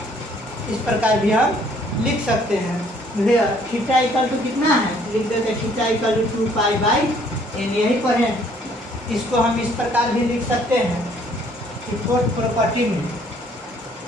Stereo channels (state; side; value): normal; both; correlation 0.61